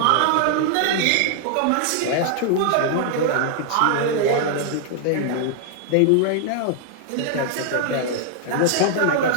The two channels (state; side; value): different; both; correlation 0.00